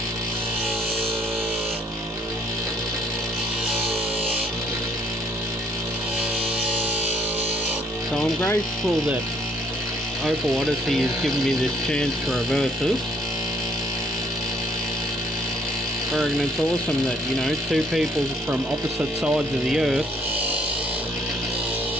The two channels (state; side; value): normal; both; correlation 0.64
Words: So I'm grateful that Opal Odessey has given me this chance to reverse this. I reckon it's awesome that, you know, two people from opposite sides of the earth